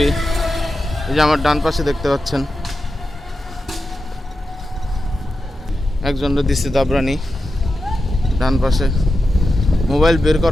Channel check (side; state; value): both; normal; correlation 0.90